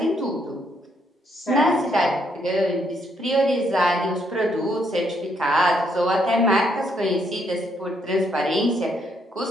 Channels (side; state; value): both; normal; correlation 0.73